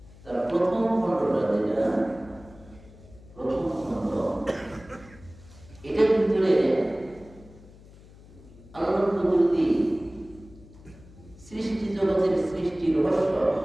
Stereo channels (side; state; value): left; noise; hum, 22 dB below the sound